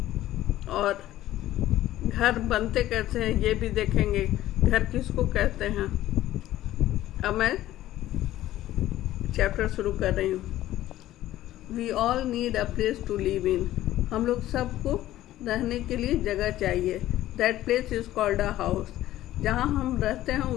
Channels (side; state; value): right; quieter; 14.3 dB